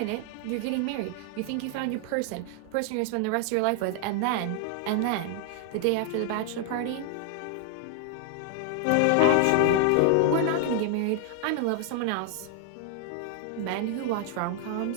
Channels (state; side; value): different; both; correlation 0.00